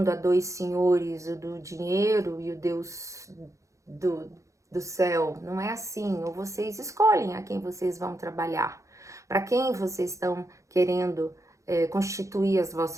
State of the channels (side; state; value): left; late; 0.15 ms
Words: a dois senhores, o do dinheiro e o Deus do, do céu. Não é assim. Ou vocês escolhem a quem vocês vão trabalhar, para quem vocês estão querendo constituir as